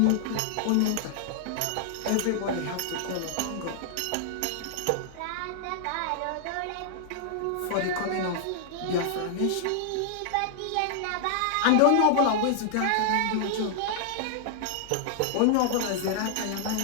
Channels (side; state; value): both; different; correlation -0.01